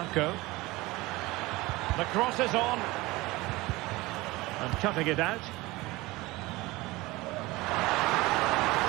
The cross is on. And cutting it out.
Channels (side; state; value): left; quieter; 20.9 dB